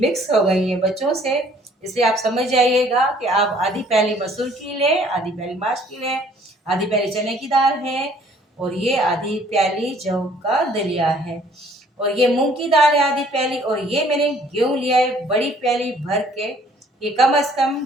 हो गई हैं बच्चों से। इसलिए आप समझ जाइएगा कि आप आधी प्याली मसूर की लें, आधी प्याली माश की लें, आधी प्याली चने की दाल है और ये आधी प्याली जौ का दलिया है और ये मूंग की दाल है आधी प्याली। और ये मैंने गेहूं लिया है बड़ी प्याली भर के, ये कम से कम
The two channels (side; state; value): both; normal; correlation 0.58